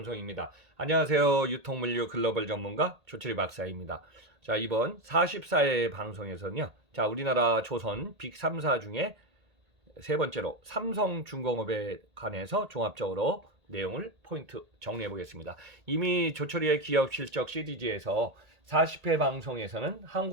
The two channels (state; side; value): late; left; 1.8 ms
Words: 안녕하세요. 유통물류 글로벌 전문가 조철이 박사입니다. 자, 이번 44회 방송에서는요. 자, 우리나라 조선 빅 3사 중에 세 번째로 삼성중공업에 관해서 종합적으로 내용을 포인트 정리해 보겠습니다. 이미 조철이의 기업 실적 시리즈에서 40회 방송에서는